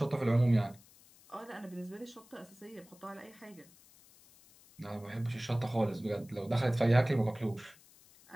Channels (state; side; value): noise; left; hiss, 25 dB below the sound